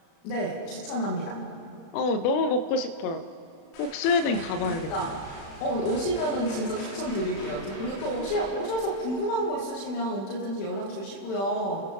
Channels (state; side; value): late; right; 36 ms